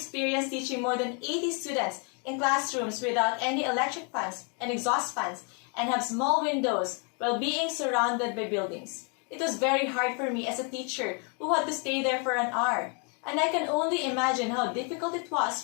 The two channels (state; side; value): quieter; right; 37.4 dB